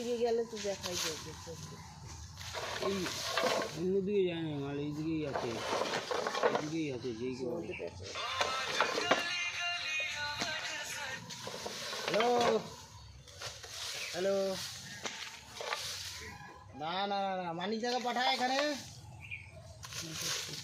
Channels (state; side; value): identical; both; correlation 1.00